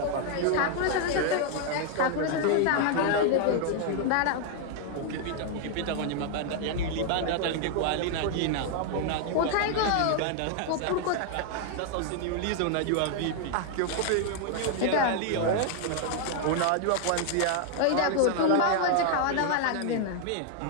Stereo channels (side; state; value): both; different; correlation 0.00